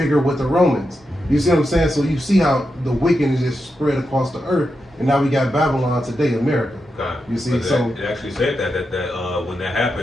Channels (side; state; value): both; normal; correlation 0.87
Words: with the Romans. You see what I'm saying? So you see how the wickedness just spread across the earth, and now we got Babylon today, America. You see, so it actually said that when that